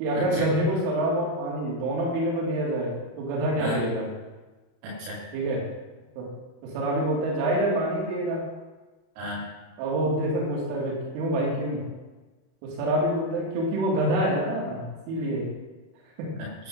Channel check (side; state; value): left; late; 31 ms